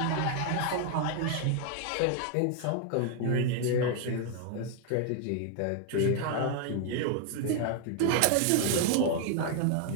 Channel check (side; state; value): both; different; correlation 0.00